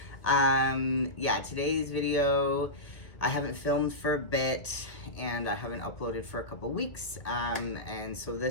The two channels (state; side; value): late; right; 1.6 ms